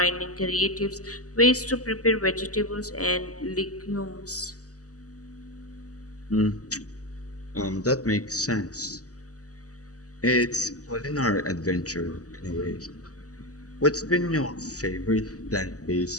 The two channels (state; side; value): late; right; 0.67 ms